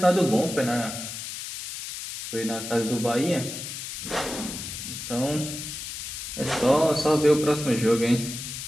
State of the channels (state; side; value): noise; left; hiss, 8 dB below the sound